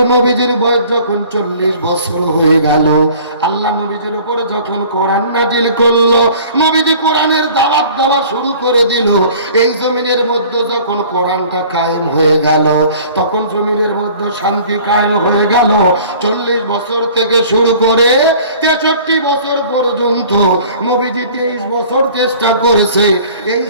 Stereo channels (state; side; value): inverted; both; correlation -0.49